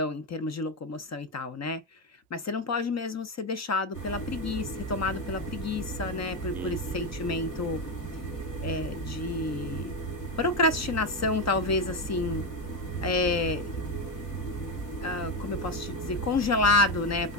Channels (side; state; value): both; normal; correlation 0.11